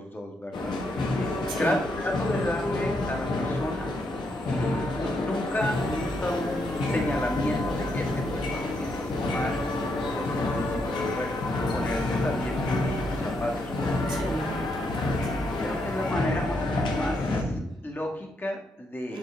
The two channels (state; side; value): normal; both; correlation 0.78